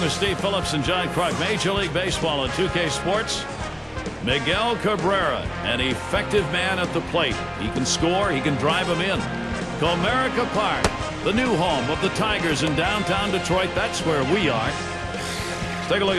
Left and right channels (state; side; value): identical; both; correlation 1.00